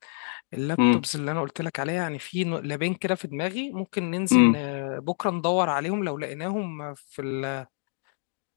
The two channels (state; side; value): silent; right; digital silence